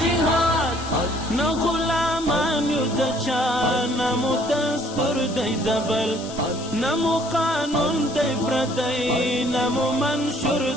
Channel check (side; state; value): left; noise; hiss, 14 dB below the sound